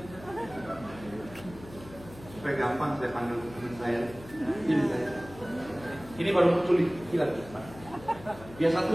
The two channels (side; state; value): left; noise; hum, 17 dB below the sound